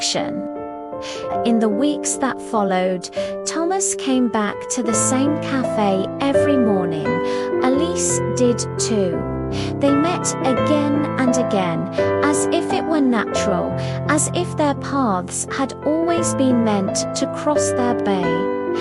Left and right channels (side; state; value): both; identical; correlation 1.00